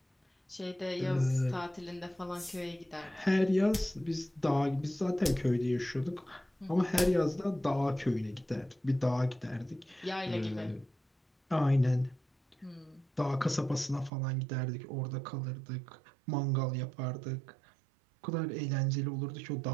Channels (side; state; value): left; drops out; at 14.1 s